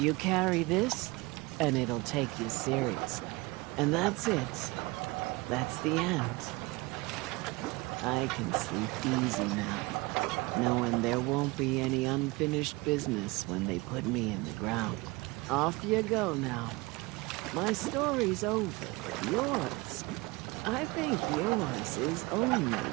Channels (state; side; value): quieter; left; 23.7 dB